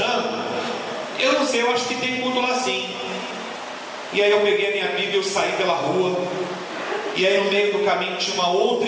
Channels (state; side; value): identical; both; correlation 1.00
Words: eu não sei, eu acho que tem culto lá sim. E aí eu peguei a minha Bíblia, eu saí pela rua, e aí no meio do caminho tinha uma outra